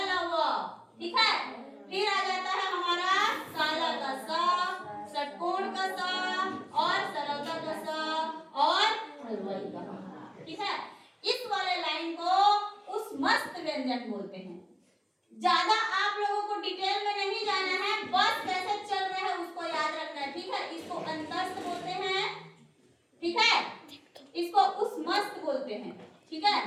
ल व, ठीक है। फिर आ जाता है हमारा काला का सा, षटकोण का सा और सरलता का सा और हलवाई का, ठीक है। इस वाले लाइन को उस मस्त व्यंजन बोलते हैं। ज्यादा आप लोगों को डिटेल में नहीं जाना है, बस कैसे चल रहे हैं उसको याद रखना है, ठीक है। इसको अंतस्थ बोलते हैं, ठीक है, इसको उस मस्त बोलते हैं, ठीक है।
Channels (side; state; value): both; identical; correlation 1.00